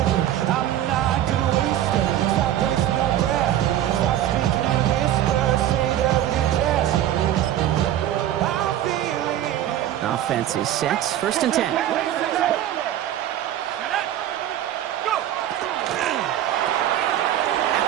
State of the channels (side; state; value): left; quieter; 12.0 dB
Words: Offense is set. 1st and 10.